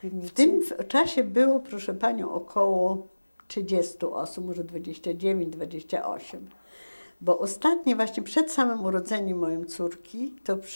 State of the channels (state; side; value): inverted; both; correlation -1.00